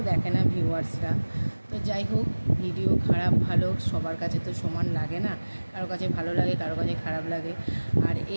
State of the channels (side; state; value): both; inverted; correlation -1.00